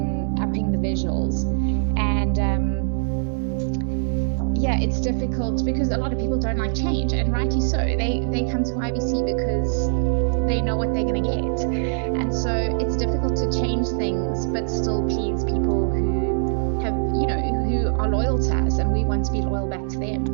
the visuals. And it's difficult because a lot of people don't like change, and rightly so. They come to IBC because they know what they're going to get, and so it's difficult to change things but still please people who have who are loyal to us, and we want to be loyal back to them.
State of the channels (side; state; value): left; silent; digital silence